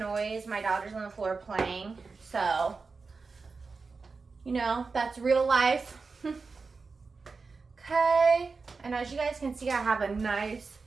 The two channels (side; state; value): left; quieter; 4.4 dB